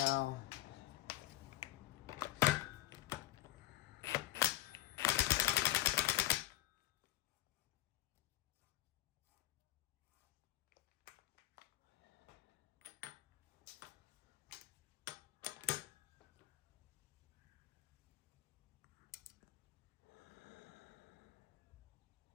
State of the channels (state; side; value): quieter; right; 15.8 dB